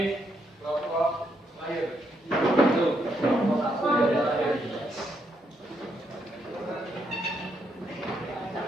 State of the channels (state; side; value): normal; both; correlation 0.77